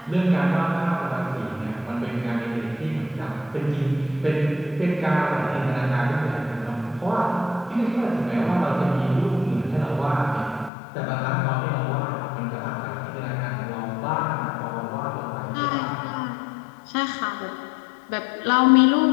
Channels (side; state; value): right; drops out; at 10.7 s